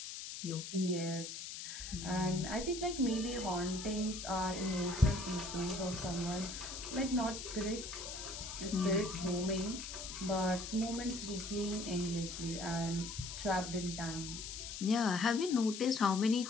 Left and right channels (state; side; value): noise; left; hiss, 8 dB below the sound